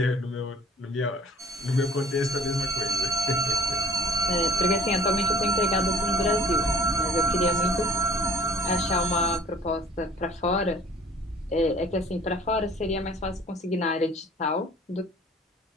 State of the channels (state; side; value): normal; both; correlation 0.50